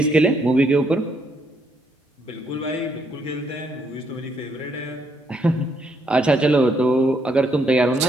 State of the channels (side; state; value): both; normal; correlation 0.74